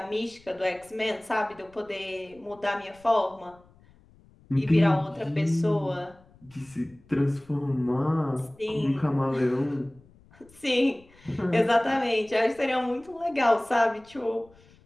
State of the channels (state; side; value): noise; left; rumble, 28 dB below the sound